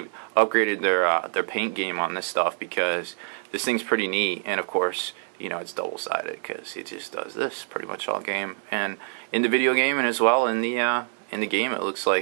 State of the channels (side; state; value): left; silent; 61 dB below the other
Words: their paint game on this stuff, because this thing's pretty neat. And of course, you know, it's double-sided because it just does this pretty much all game, and in the video game, and as well in the game, it looks